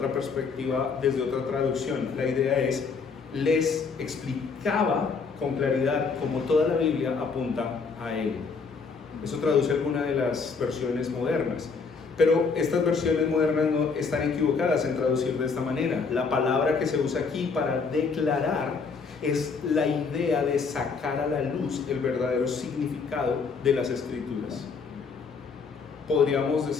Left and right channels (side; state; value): right; quieter; 5.0 dB